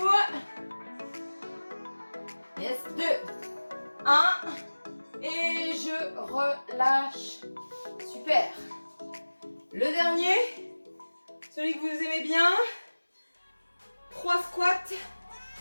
Yes, 2, 1. Et je relâche. Super. Le dernier, celui que vous aimez bien. 3 squats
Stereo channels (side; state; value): both; inverted; correlation -1.00